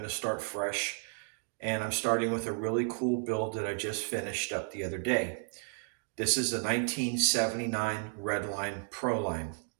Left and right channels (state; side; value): silent; left; 56 dB below the other